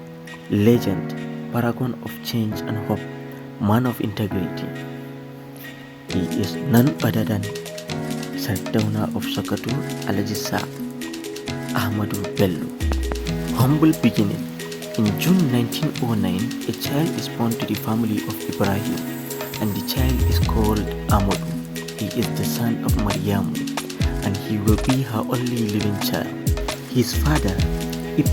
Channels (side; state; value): both; identical; correlation 1.00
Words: legend, paragon of change and hope, man of integrity. He is none other than Sardauna of Sokoto, Alhaji Ahmadu Bello. Humble beginning. In June 1909, a child is born to the family of Ibrahim, and the child is called Ahmadu. He is the son of Maryamu, and he will be her only living child. His father,